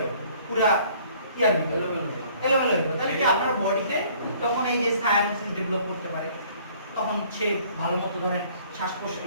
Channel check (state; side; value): inverted; both; correlation -0.57